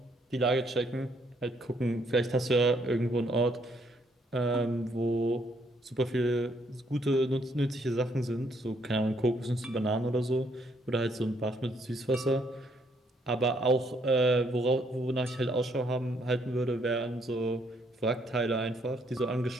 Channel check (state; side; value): normal; both; correlation 0.70